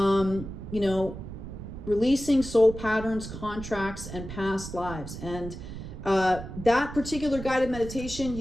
know, releasing soul patterns, contracts, and past lives. And That particular guided meditation,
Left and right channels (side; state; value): right; noise; rumble, 10 dB below the sound